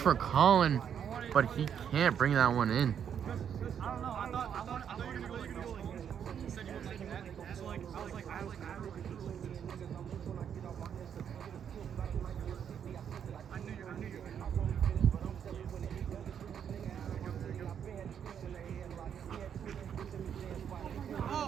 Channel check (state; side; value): quieter; left; 8.3 dB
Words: Colin, but he can't bring that one in. I don't know. I thought you were gonna go like you said you were taking that. So like I was like I knew you.